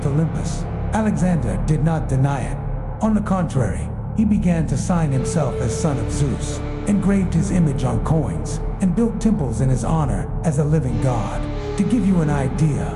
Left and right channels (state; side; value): identical; both; correlation 1.00